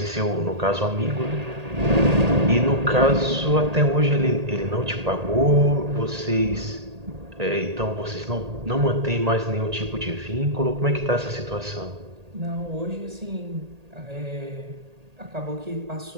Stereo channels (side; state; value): left; late; 1.8 ms